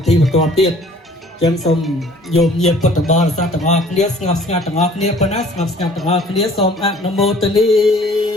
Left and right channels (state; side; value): normal; both; correlation 0.53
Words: ធីបន្តទៀតចឹងសូមយោមញាតិពុទ្ធបរិស័ទទាំងអស់គ្នាស្ងប់ស្ងាត់ទាំងអស់គ្នាប៉ុណ្ណាស្ងប់ស្ងាត់ទាំងអស់គ្នាសូមអនុមោទនី